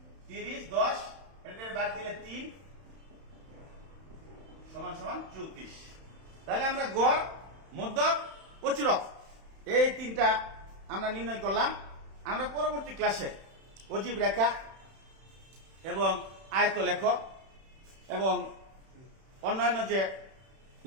30 10, এটার বাদ দিলে 3 সমান সমান 34। তাহলে আমরা গড়, মধ্যক, প্রচুরক এই তিনটা আমরা নির্ণয় করলাম। আমরা পরবর্তী ক্লাসে অজীব রেখা এবং আয়ত লেখ এবং অন্যান্য যে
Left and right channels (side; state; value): left; late; 31 ms